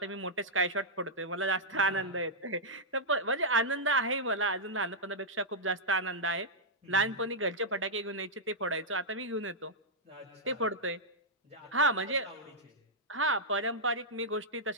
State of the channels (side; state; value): both; normal; correlation -0.08